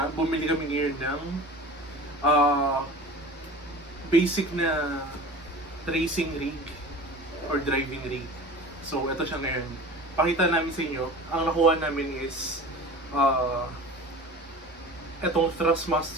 bumili kami ngayon ng basic na racing rig or driving rig. So, ito siya ngayon. Pakita namin sa inyo. Ang nakuha namin is itong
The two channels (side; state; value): both; normal; correlation 0.37